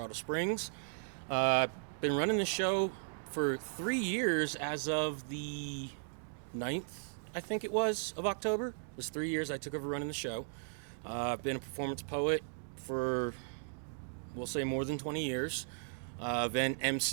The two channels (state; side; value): silent; left; digital silence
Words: Springs. Been running the show for 3 years as of the 9th, I think it was, of October. It was 3 years I took over running the show. I've been a performance poet for, we'll say, more than 20 years. Then